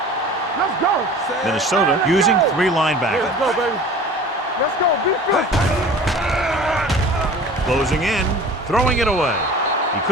Let's go. Minnesota using 3 linebackers. Let's go, baby. Let's go. Defense. Closing in, throwing it away. He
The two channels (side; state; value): both; normal; correlation 0.42